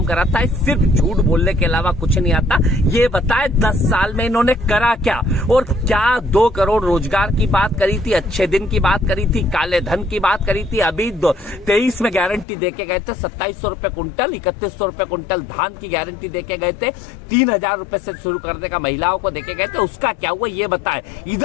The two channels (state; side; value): drops out; right; at 12.5 s